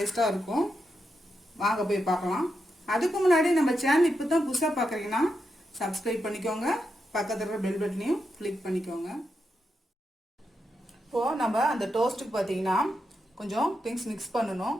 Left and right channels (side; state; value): both; normal; correlation 0.85